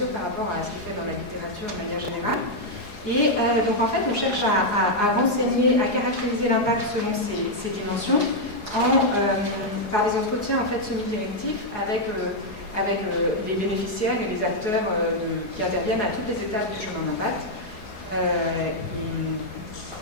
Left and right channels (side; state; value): right; late; 4.8 ms